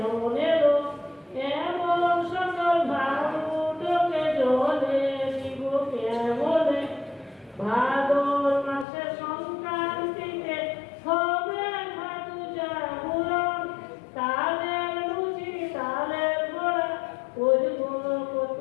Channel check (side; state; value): right; drops out; at 8.8 s